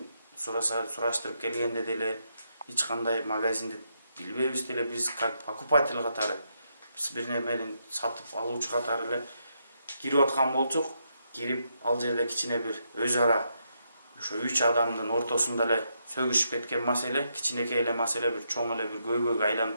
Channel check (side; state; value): both; inverted; correlation -0.80